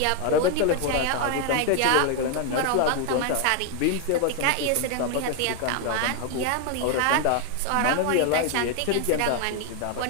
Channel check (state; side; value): different; both; correlation 0.00